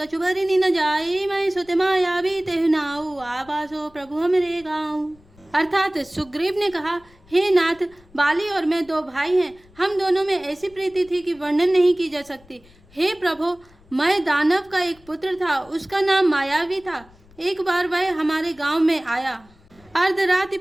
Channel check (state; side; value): noise; left; rumble, 28 dB below the sound